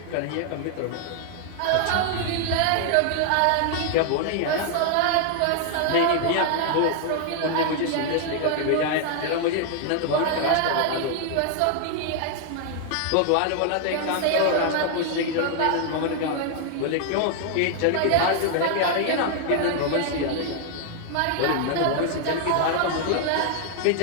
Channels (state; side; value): different; both; correlation 0.00